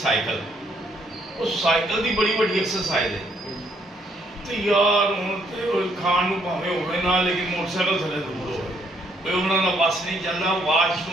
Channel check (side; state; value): both; normal; correlation 0.70